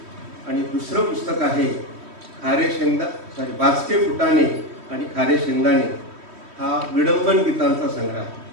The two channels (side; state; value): left; late; 3.1 ms